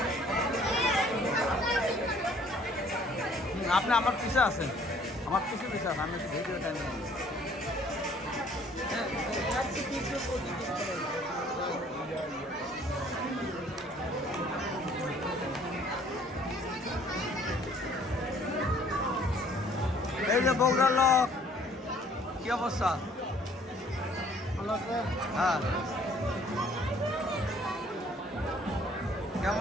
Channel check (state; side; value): normal; both; correlation 0.58